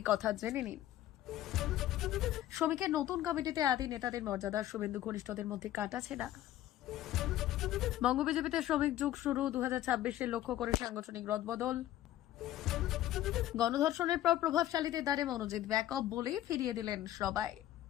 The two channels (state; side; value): quieter; right; 13.5 dB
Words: কথা, জেনে নিন। শ্রমিকের নতুন কমিটিতে আদি নেতাদের মর্যাদা, শুভেন্দু ঘনিষ্ঠদের মধ্যে কাটাছেড়া। বঙ্গ বিজেপিতে শ্রমিক যুগ শুরু, 2026-এর লক্ষ্য করে সাংগঠনিক রদবদল। গণধর্ষণের পর প্রভাবশালীদের দ্বারে মনোজিৎ ব্যাকআপ বলেই ফিরিয়ে দিলেন সবাই।